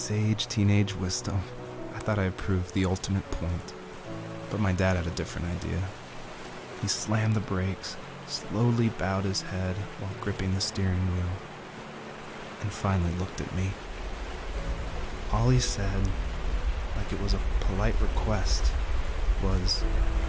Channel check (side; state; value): both; identical; correlation 1.00